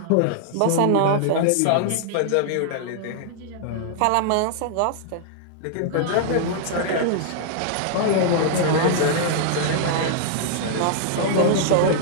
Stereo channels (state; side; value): different; both; correlation -0.01